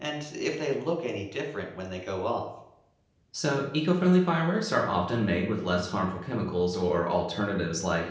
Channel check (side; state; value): both; identical; correlation 1.00